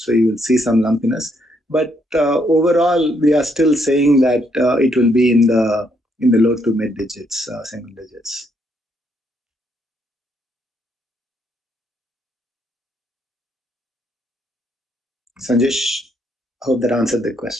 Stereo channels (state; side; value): normal; both; correlation 0.73